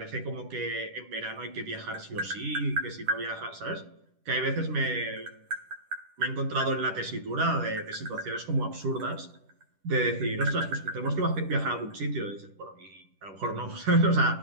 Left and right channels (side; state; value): left; late; 10 ms